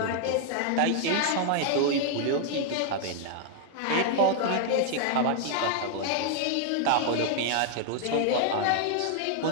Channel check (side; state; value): both; different; correlation 0.00